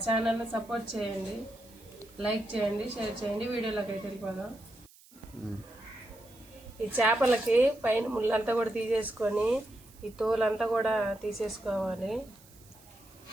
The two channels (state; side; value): noise; right; hiss, 25 dB below the sound